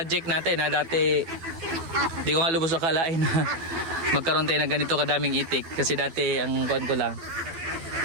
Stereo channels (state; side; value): late; left; 12 ms